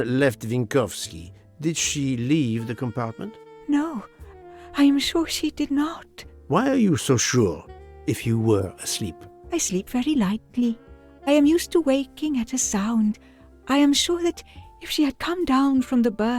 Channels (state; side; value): identical; both; correlation 1.00